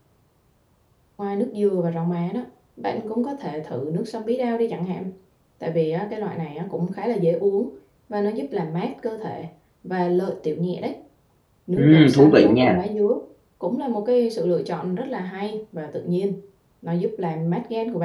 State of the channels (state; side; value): identical; both; correlation 1.00